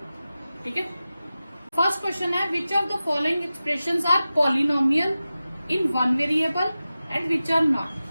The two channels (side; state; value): both; inverted; correlation -0.94